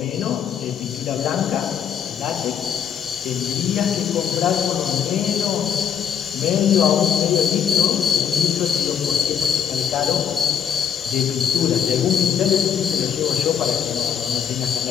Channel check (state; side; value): quieter; right; 8.1 dB